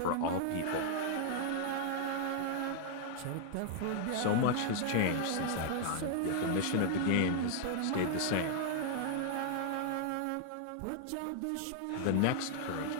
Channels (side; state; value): both; different; correlation -0.01